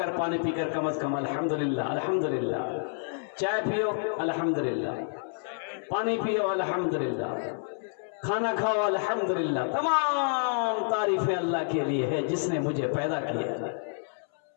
पानी पीकर, कम से कम अल्हम्दुलिल्लाह, अल्हम्दुलिल्लाह। चाय पियो अल्हम्दुलिल्लाह, पानी पियो अल्हम्दुलिल्लाह, खाना खाओ अल्हम्दुलिल्लाह। तमाम तारीफें अल्लाह के लिए है जिसने मुझे पैदा किया।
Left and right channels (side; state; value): right; silent; 59 dB below the other